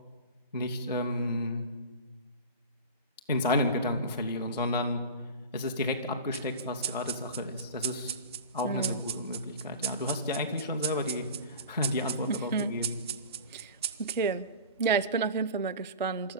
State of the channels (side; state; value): both; inverted; correlation -0.33